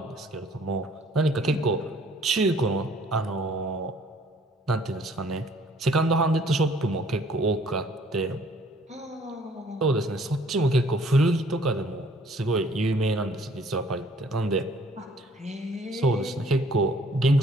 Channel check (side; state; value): both; normal; correlation 0.58